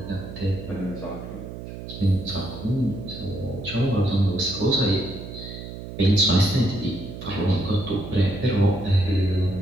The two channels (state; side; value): noise; right; hum, 11 dB below the sound